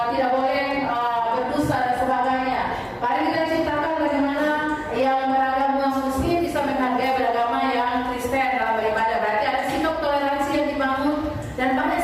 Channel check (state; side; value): identical; both; correlation 1.00